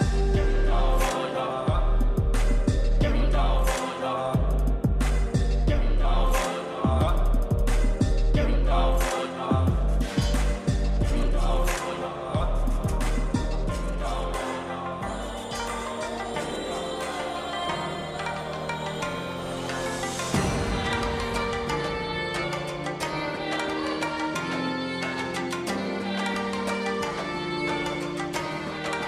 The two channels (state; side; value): identical; both; correlation 1.00